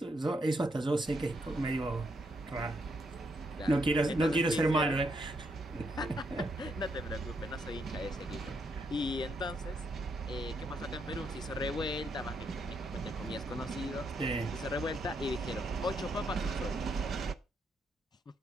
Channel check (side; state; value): both; normal; correlation 0.77